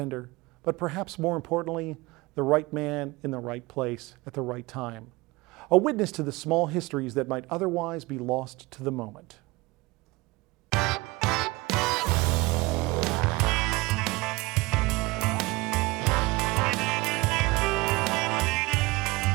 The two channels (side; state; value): left; quieter; 22.3 dB